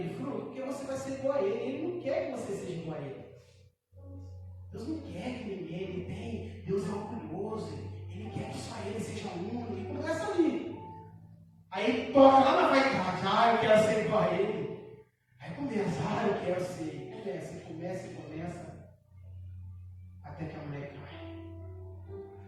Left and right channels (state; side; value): identical; both; correlation 1.00